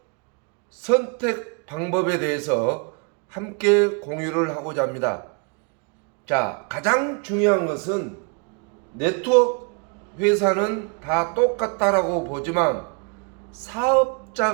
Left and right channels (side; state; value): left; quieter; 35.9 dB